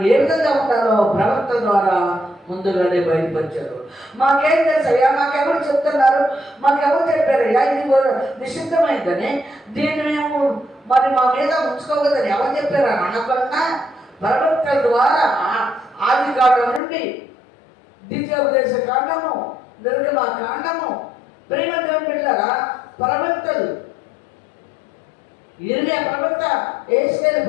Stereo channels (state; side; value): drops out; right; at 16.8 s